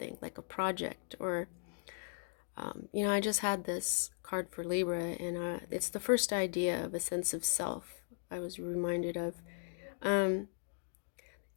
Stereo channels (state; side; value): silent; right; digital silence